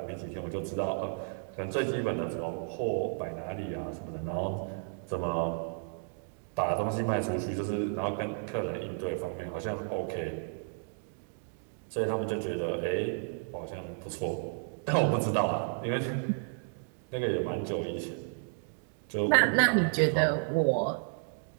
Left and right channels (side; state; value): left; silent; 56 dB below the other